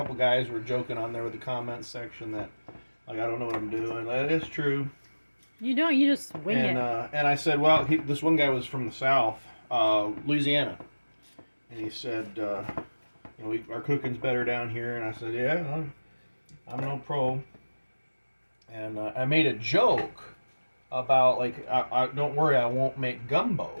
guys were joking on there with the comments section that, like, I don't know what I'm doing. That is true. You don't. You just wing it. And I said, well, this one guy was from the South, Louisiana, and he said, our cooking's better down here. And I said, yeah, I'm no pro. And I made a joke about, like, I don't worry, I won't make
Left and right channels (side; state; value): both; inverted; correlation -1.00